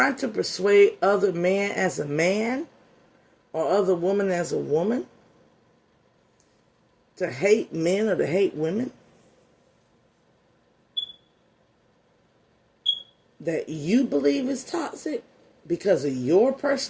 persuade other man as a man or other woman as a woman to hate men or to hate women that you believe is toxic because of your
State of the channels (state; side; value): identical; both; correlation 1.00